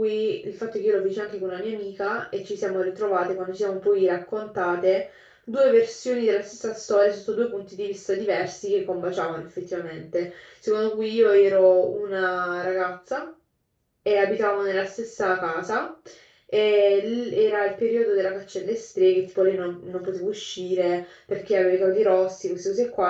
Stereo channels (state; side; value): identical; both; correlation 1.00